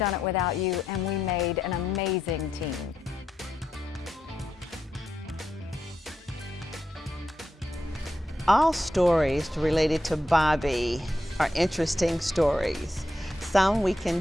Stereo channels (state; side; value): normal; both; correlation 0.84